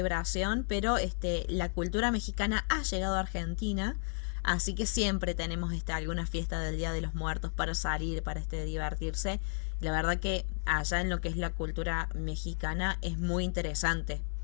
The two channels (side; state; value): right; silent; 56 dB below the other